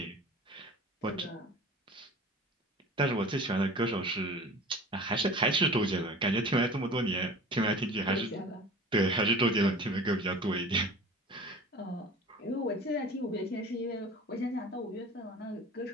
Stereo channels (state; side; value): normal; both; correlation 0.40